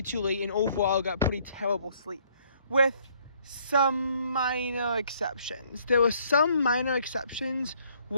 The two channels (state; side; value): inverted; both; correlation -0.65